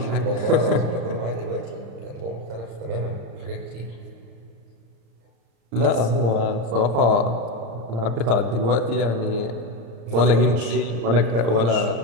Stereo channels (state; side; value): late; left; 35 ms